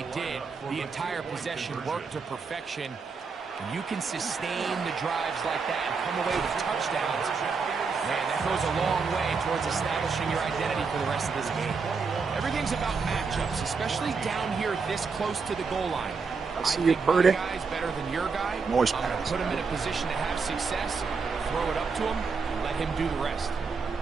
did, the entire possession worked to perfection. And you can sustain the drives like that and come away with touchdowns. Man, that goes a long way towards establishing your identity for the rest of this game. Everything's about matchups, especially down here this close to the goal line. I see you, Purdy. My guy's better than your guy. Noise I'm going to pass. put him in a position to have success, throw it up to him, and let him do the rest.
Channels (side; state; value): left; quieter; 5.0 dB